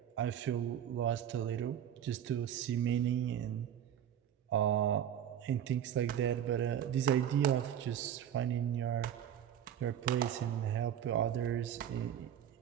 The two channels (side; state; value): left; quieter; 9.8 dB